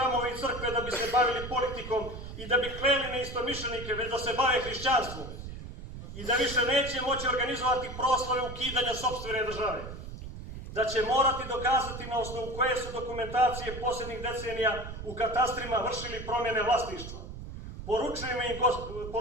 i crkve da bi se bavili politikom i da bi kleli neistomišljenike, već da se bave hrišćanstvom. I da više neće moći organizovati proslave ukidanja sopstvene države. Da će morati dokazati na osnovu koje su dokumentacije posljednjih decenija u katastrima vršili promjene vlasništva.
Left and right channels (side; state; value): right; noise; rumble, 10 dB below the sound